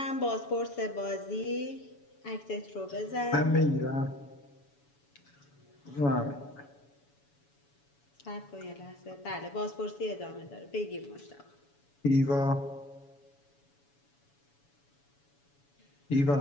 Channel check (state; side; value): late; right; 7.1 ms